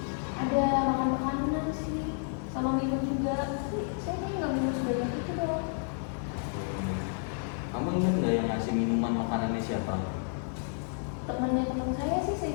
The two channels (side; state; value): right; silent; 57 dB below the other